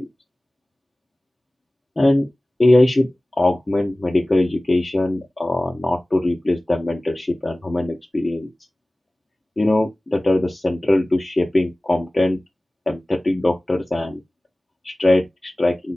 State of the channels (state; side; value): normal; both; correlation 0.98